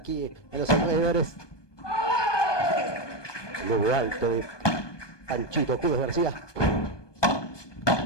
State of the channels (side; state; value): right; late; 1.2 ms